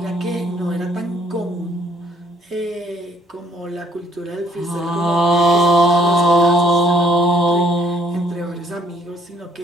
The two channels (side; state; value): both; normal; correlation 0.64